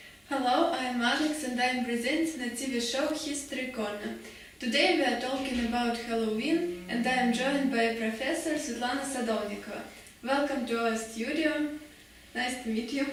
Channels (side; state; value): both; identical; correlation 1.00